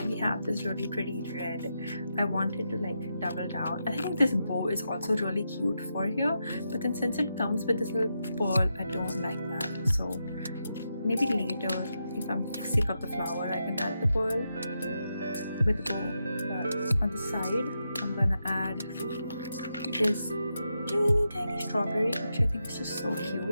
we have this really pretty red, I wanted to like double down. I think this bow is also really cute for here, but then since it comes with this little pearl, I don't like that. So maybe later, if I'm sick of the flower, I can add the pearl with the bow. But on the side, I'm gonna add this teeny tiny strawberry, which I think is just so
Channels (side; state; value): both; inverted; correlation -0.85